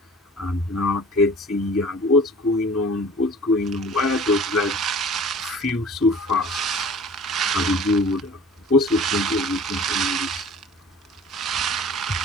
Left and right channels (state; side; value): normal; both; correlation 0.45